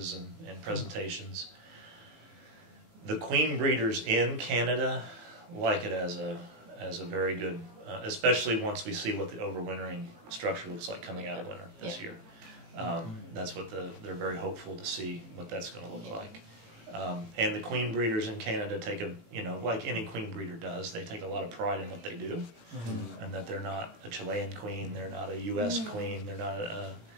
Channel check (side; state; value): left; late; 18 ms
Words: and presentations. The queen breeders in Canada like it as a very good, especially once we see what the overwintering structure looks like coming out of winter this year. That's what they're very hopeful to see what that's going to look like. And the queen breeders in Canada take like any queen breeder does, they take a lot of pride in what they do, and that they're not a Chilean queen, they're not a U.S. queen, they're not a